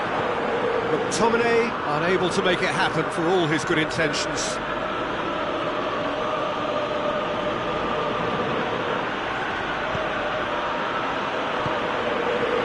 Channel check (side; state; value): both; identical; correlation 1.00